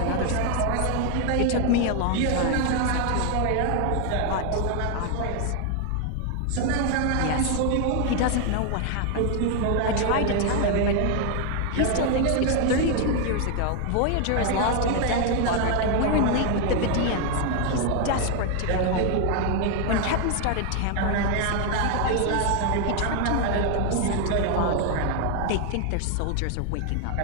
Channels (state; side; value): different; both; correlation 0.00